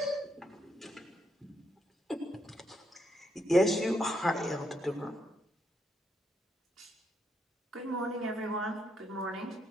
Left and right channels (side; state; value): both; normal; correlation 0.77